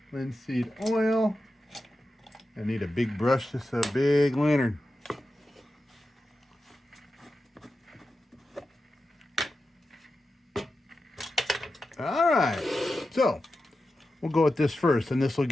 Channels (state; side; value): normal; both; correlation 0.91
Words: Linseed oil. I need a big brush. This is a big lantern. All right. So, we'll go with this first, and this will